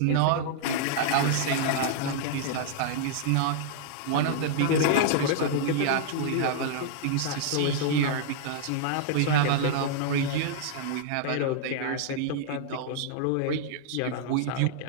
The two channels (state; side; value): different; both; correlation -0.01